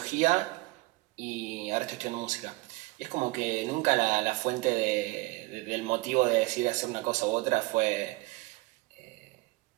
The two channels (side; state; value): left; quieter; 22.3 dB